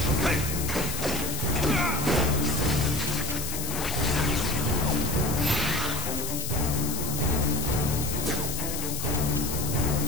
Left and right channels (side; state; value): left; noise; hiss, 5 dB below the sound